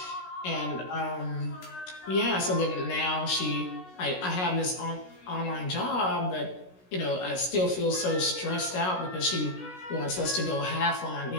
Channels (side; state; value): right; late; 16 ms